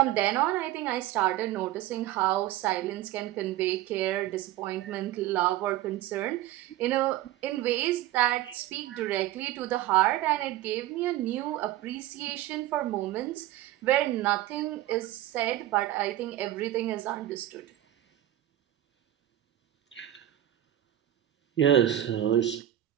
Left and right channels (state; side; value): quieter; left; 13.8 dB